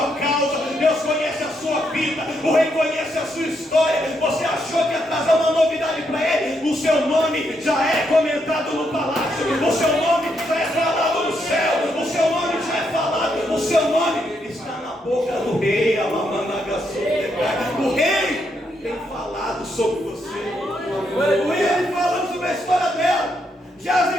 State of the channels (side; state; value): both; normal; correlation 0.78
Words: causa, Deus conhece a sua vida, o rei conhece a sua história. Você achou que ia trazer uma novidade para ele? O seu nome já é comentado no palácio, o seu nome já é falado no céu, o seu nome já é falado, o seu nome está na boca do rei. O rei tem falado sobre você, o rei falando sobre a história dela, já